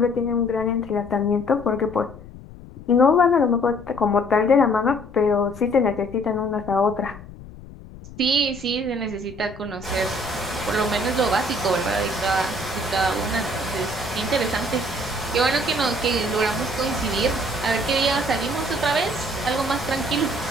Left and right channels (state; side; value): noise; left; rumble, 17 dB below the sound